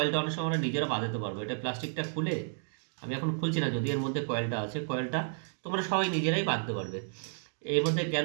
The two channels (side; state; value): left; silent; digital silence